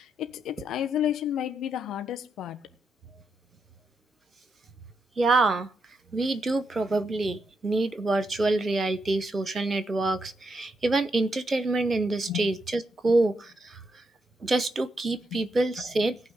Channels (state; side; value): normal; both; correlation 0.82